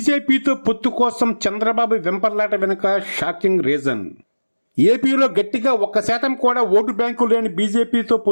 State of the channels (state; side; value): inverted; both; correlation -1.00